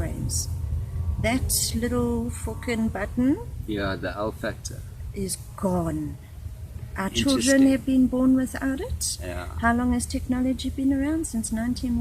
That little fucking button, the L factor, is gone. Our children have been born without it. Yeah. How long has technology been around? Since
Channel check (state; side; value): identical; both; correlation 1.00